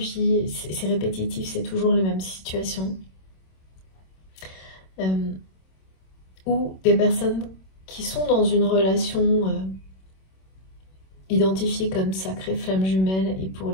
c'est répétitif, c'est toujours les mêmes situations. Ou des personnes qui sont dans une relation identifiée comme sacrée flamme jumelle et pour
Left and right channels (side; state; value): right; late; 26 ms